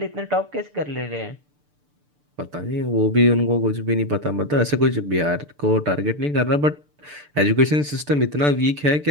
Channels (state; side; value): late; left; 6.8 ms